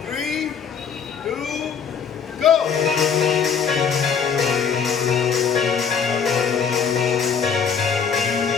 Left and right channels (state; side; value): quieter; right; 6.7 dB